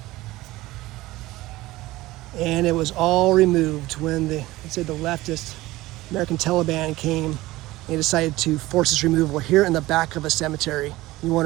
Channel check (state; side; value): quieter; left; 18.3 dB